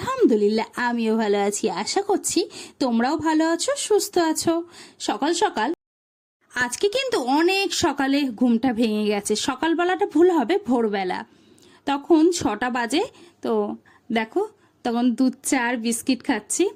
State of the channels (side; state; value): both; identical; correlation 1.00